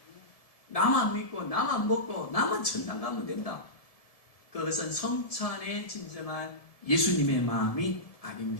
나만 믿고 나만 먹고 나만 천당 가면 된다. 그것은 성찬의 진정한 예수님의 마음이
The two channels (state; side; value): late; right; 1.7 ms